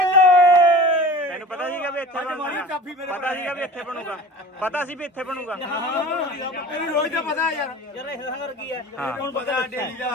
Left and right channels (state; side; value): normal; both; correlation 0.38